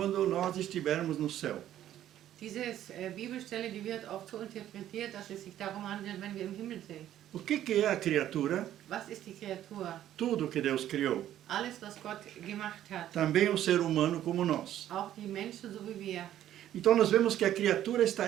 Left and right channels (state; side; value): quieter; left; 12.0 dB